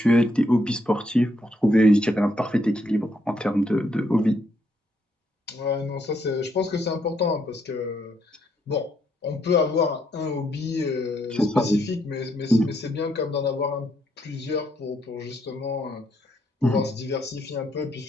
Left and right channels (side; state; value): both; normal; correlation 0.74